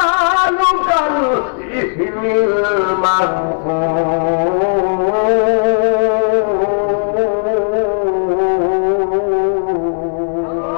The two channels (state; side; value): silent; right; digital silence